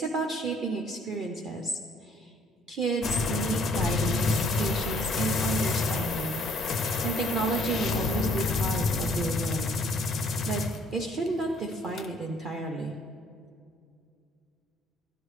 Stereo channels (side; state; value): both; normal; correlation 0.61